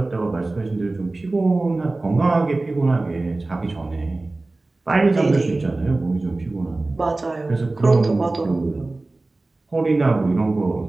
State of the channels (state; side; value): quieter; left; 3.1 dB